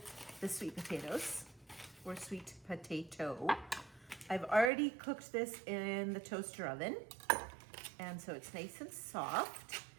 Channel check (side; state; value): left; drops out; at 4.7 s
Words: the sweet potatoes, or sweet potato. I've already cooked this in the toaster oven, and so it's nice and soft.